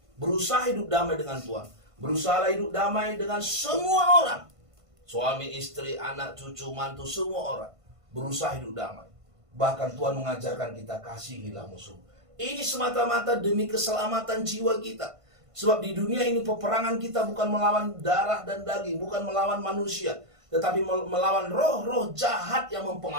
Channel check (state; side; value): late; left; 1.5 ms